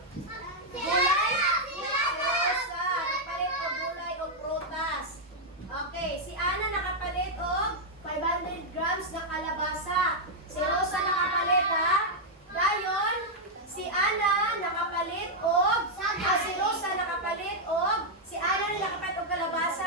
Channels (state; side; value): normal; both; correlation -0.03